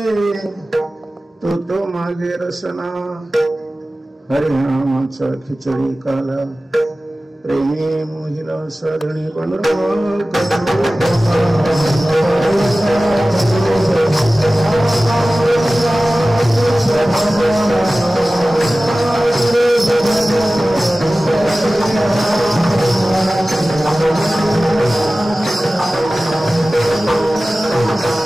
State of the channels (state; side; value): normal; both; correlation 0.97